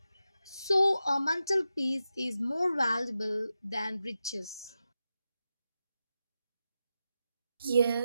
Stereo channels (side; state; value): both; inverted; correlation -0.90